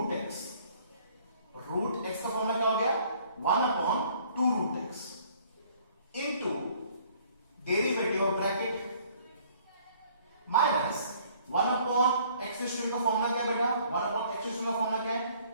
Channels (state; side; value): inverted; both; correlation -0.58